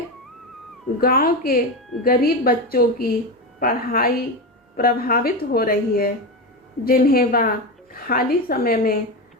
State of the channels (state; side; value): normal; both; correlation 0.17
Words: गांव के गरीब बच्चों की पढ़ाई प्रभावित हो रही है, जिन्हें वह खाली समय में